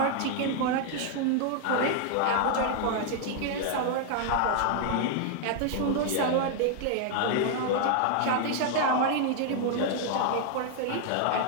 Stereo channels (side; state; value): both; different; correlation 0.00